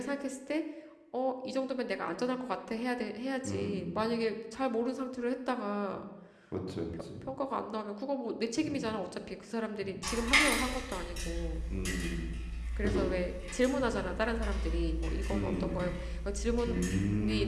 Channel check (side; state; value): both; identical; correlation 1.00